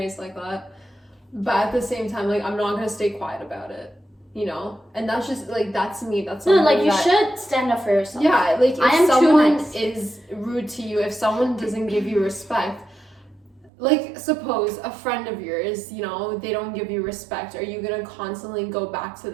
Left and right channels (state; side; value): drops out; left; at 13.7 s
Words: like that. But at the same time, like, I'm not gonna stay quiet about it, you know? And that's just, like, that's me. That's no, like, you should stand up for yourself. Yeah, like, if someone is rude to you, if someone doesn't give you respect, like, suppose a friend of yours, you know, they don't give you respect. Are you gonna constantly go back to